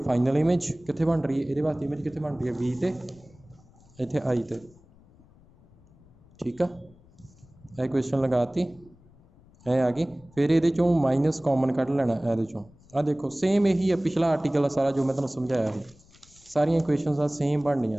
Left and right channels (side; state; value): left; noise; rumble, 27 dB below the sound